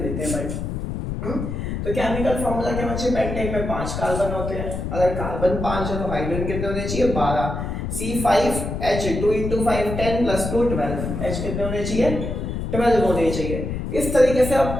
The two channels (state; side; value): noise; left; rumble, 4 dB below the sound